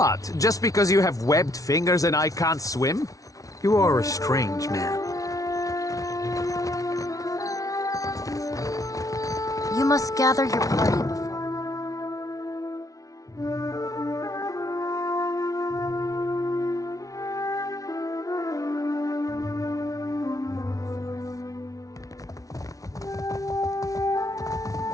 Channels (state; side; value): late; right; 0.17 ms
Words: Just because you have webbed fingers and I can't swim? You are a strange man. You must gather your party before.